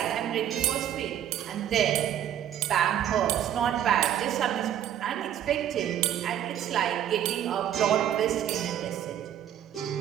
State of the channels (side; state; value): left; quieter; 10.6 dB